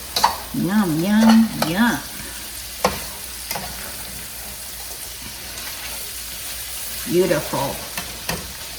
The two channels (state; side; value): identical; both; correlation 1.00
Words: Yum, yum, yum. Beautiful.